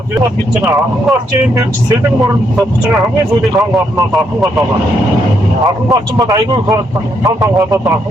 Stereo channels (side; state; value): both; normal; correlation 0.76